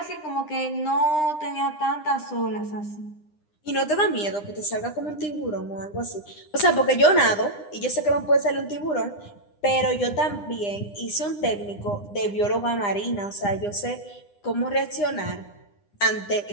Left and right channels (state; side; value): late; right; 9.9 ms